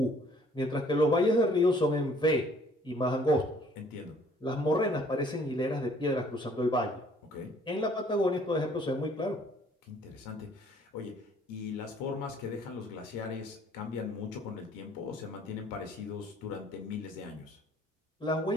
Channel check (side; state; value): both; normal; correlation 0.59